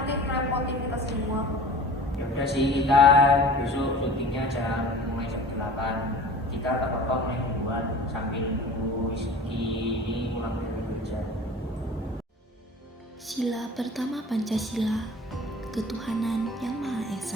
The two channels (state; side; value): normal; both; correlation 0.41